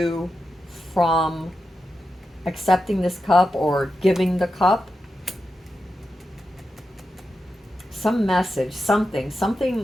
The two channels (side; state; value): both; normal; correlation 0.90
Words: from accepting this cup or giving the cup. Some message, something